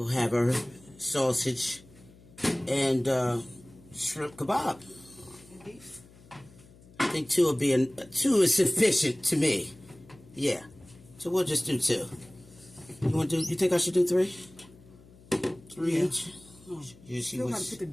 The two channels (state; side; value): noise; left; hum, 24 dB below the sound